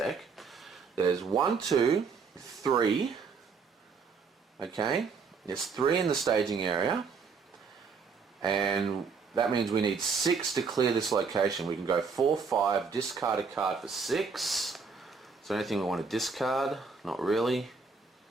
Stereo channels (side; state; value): left; quieter; 5.2 dB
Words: There's 1, 2, 3. Okay, there's 3 in the staging area, and that means we need 6 to clear this location. We can go 4, 5, discard a card for 6. Is there anything we want to discard? Not really.